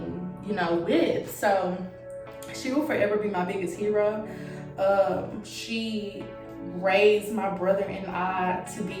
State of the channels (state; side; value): identical; both; correlation 1.00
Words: with. So she will forever be my biggest hero. She raised my brother and I to